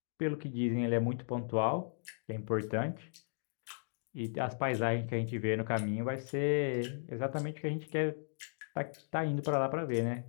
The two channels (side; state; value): right; silent; digital silence